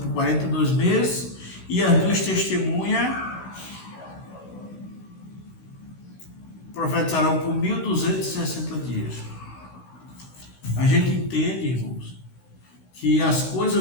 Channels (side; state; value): right; late; 16 ms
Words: 42 meses e as duas testemunhas profetizarão por 1.260 dias? A gente entende, irmãos, que as